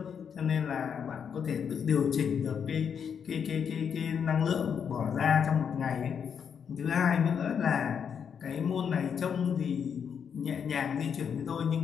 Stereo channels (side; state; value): right; quieter; 7.3 dB